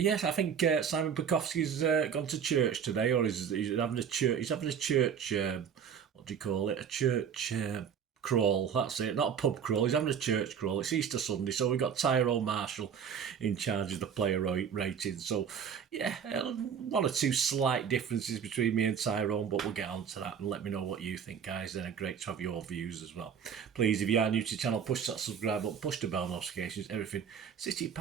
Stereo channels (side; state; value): left; quieter; 7.6 dB